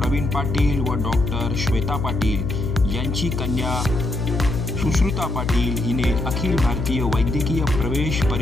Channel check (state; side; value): noise; left; hum, 2 dB below the sound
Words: पाटील व डॉक्टर श्वेता पाटील यांची कन्या सुश्रुता पाटील हिने अखिल भारतीय वैद्यकीय प्रवेश